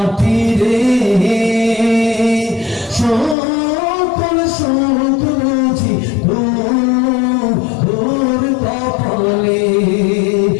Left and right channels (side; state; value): right; drops out; at 3.4 s